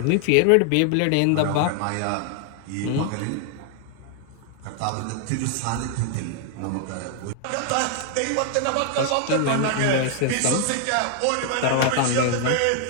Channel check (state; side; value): different; both; correlation 0.00